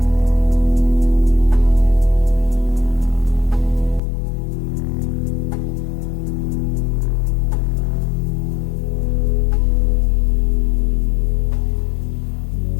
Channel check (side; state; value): right; drops out; at 4.0 s